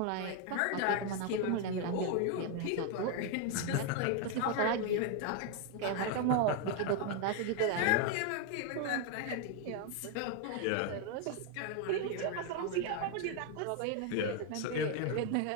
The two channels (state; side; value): different; both; correlation 0.01